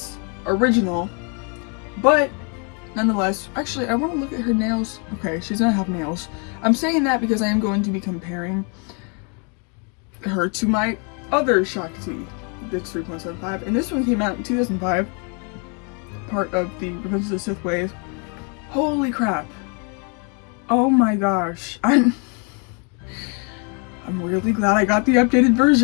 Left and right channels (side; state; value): right; quieter; 36.8 dB